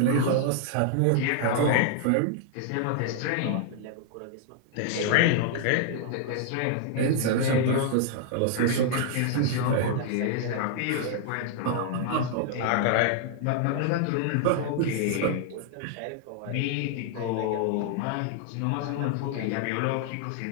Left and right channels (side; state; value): both; different; correlation -0.01